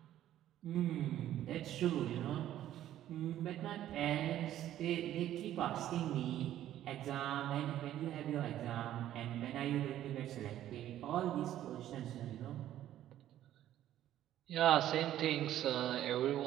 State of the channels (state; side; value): quieter; left; 12.4 dB